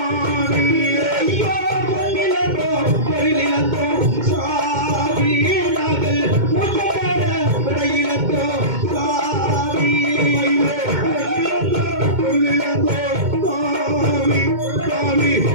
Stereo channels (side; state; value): left; late; 2.1 ms